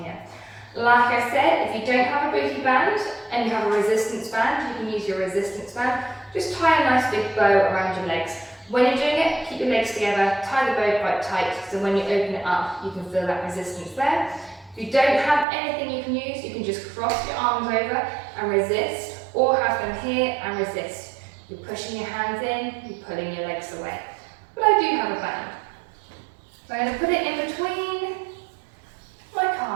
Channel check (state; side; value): drops out; left; at 15.5 s